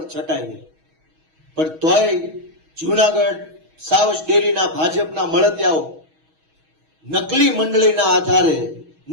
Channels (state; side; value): late; left; 6.3 ms